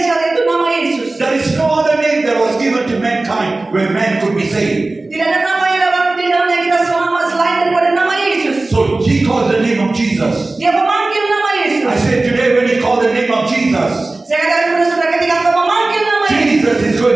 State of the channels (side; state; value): left; quieter; 3.1 dB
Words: itu nama Yesus. There is no other name that was given to mankind where man could be saved. Tidak ada nama yang dapat di dalamnya kita selamat selain daripada nama Yesus. So he called the name of Jesus. Dia memanggil nama Yesus. I said today when he called the name of Jesus, Saya katakan kepada saudara, ketika engkau memanggil nama Yesus, Jesus is